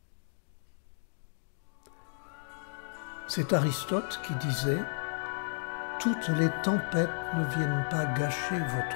C'est Aristote qui disait « Toutes les tempêtes ne viennent pas gâcher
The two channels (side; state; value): right; silent; digital silence